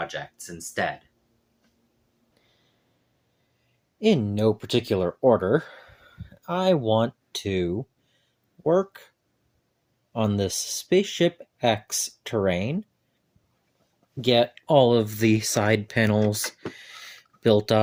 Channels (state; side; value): identical; both; correlation 1.00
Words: instead. In no particular order, I want to work on this Spaceship X terrain, get all of the side panels built